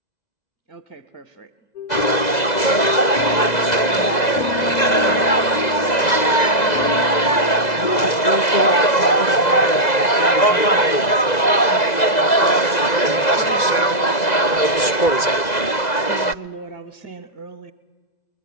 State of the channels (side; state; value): right; late; 2.0 ms